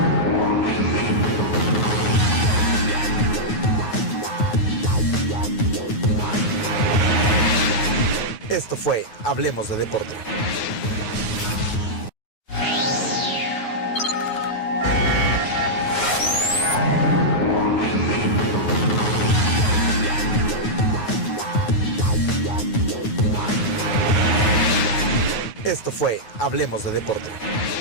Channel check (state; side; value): late; right; 9.4 ms